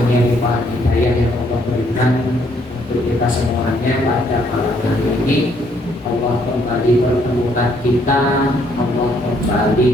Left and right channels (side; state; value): both; normal; correlation 0.68